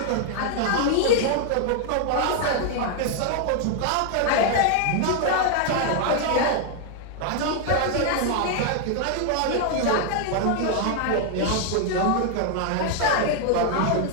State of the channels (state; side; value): different; both; correlation 0.00